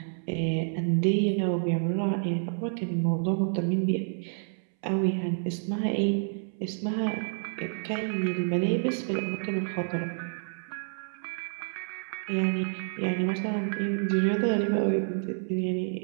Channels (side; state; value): left; silent; 59 dB below the other